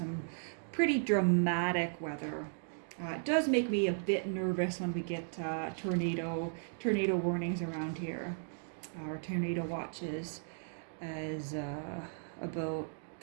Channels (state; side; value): silent; left; digital silence